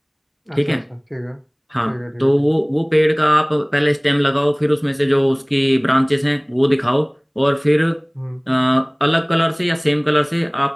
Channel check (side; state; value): both; identical; correlation 1.00